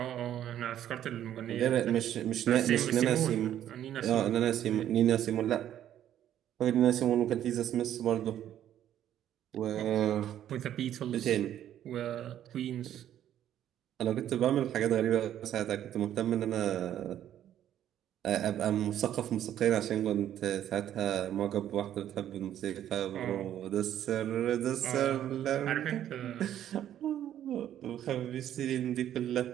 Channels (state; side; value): quieter; left; 11.1 dB